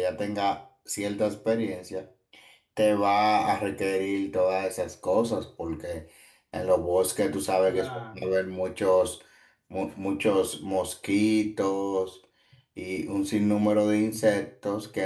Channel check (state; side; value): identical; both; correlation 1.00